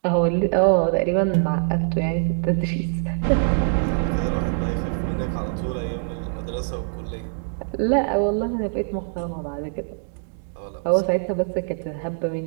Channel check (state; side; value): silent; left; digital silence